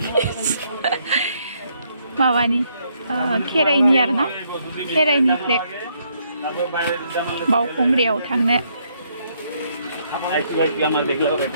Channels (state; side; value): inverted; both; correlation -0.72